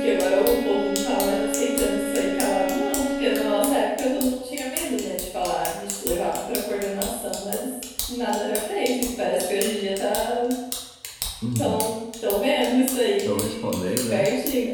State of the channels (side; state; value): both; identical; correlation 1.00